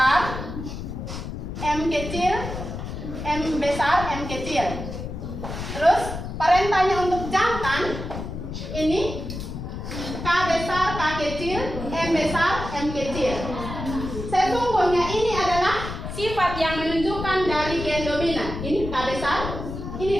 M kecil, M besar, M kecil. Terus parentalnya untuk jantan ini K besar, K kecil, M besar, M kecil. Sesungguhnya ini adalah sifat yang menunjukkan dari gen dominan. Ini K besar, ini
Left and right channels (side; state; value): left; noise; rumble, 7 dB below the sound